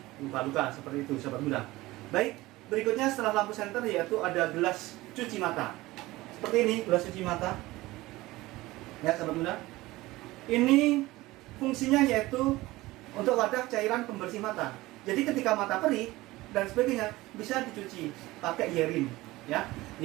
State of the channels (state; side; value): quieter; left; 19.0 dB